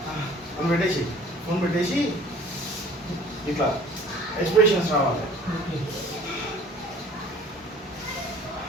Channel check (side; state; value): both; normal; correlation 0.50